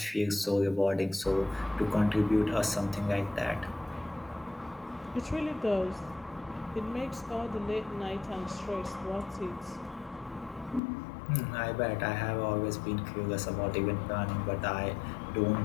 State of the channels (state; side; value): drops out; right; at 10.8 s